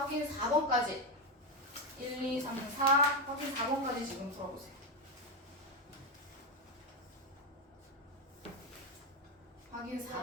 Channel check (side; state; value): both; normal; correlation 0.09